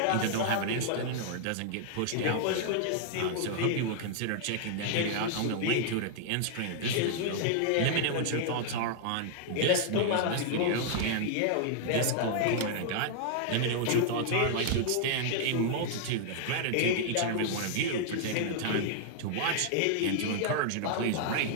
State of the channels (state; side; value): different; both; correlation -0.01